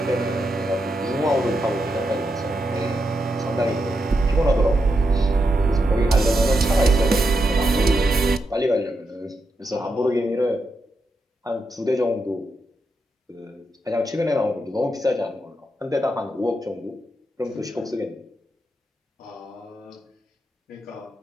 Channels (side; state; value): both; normal; correlation 0.85